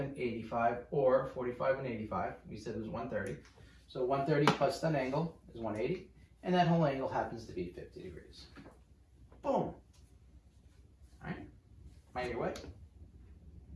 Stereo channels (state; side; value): identical; both; correlation 1.00